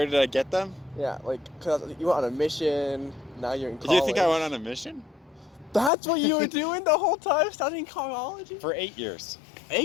did I get them? Yeah, like, cause you went on a mission, now you're in college. Do you think I went on a mission? That's what you were doing the whole time, studying carology? For 8 years.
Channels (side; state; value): right; drops out; at 5.9 s